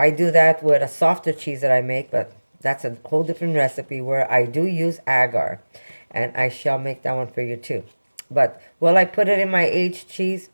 do that with a softer cheese that I make, but that's a whole different recipe where I do use agar. And I shall make that one for you too. But will I put it in my aged cheese?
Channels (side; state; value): both; inverted; correlation -1.00